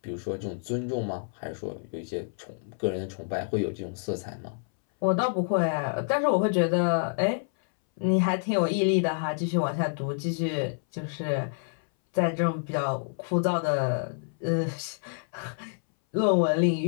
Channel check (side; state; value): right; silent; 59 dB below the other